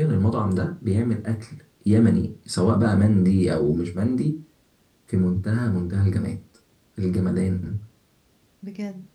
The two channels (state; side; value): identical; both; correlation 1.00